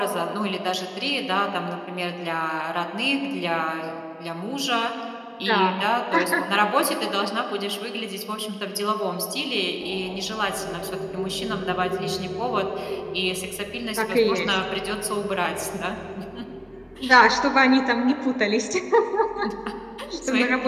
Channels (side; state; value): both; identical; correlation 1.00